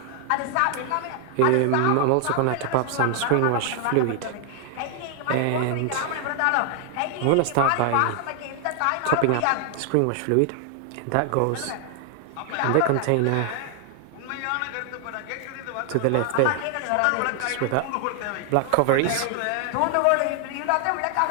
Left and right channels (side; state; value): both; different; correlation 0.00